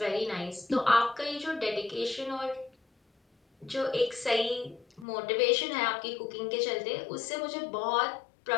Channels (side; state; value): right; drops out; at 5.1 s